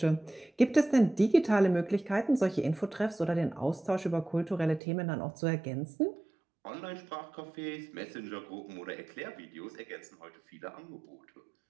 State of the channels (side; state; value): left; drops out; at 4.8 s